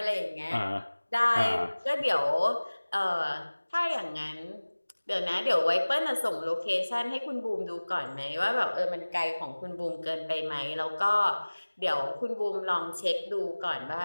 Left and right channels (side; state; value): both; inverted; correlation -1.00